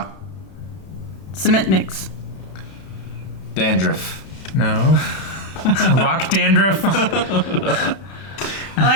Cement mix. Dandruff. No. Rock dandruff. I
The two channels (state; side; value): late; right; 32 ms